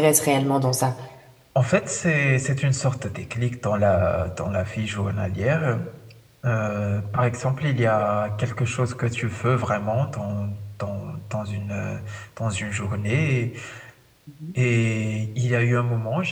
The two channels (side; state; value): both; identical; correlation 1.00